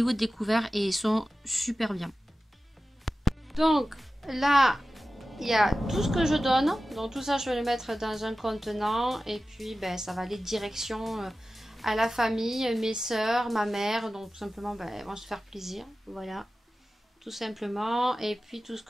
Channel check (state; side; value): normal; both; correlation 0.95